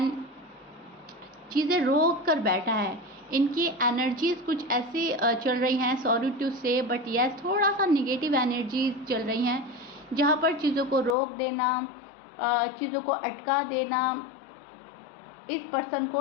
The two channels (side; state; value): right; drops out; at 11.2 s